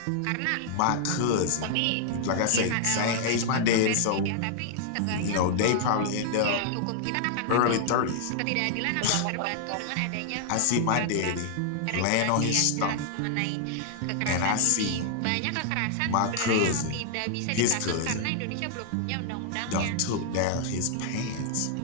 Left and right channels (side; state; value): both; different; correlation 0.00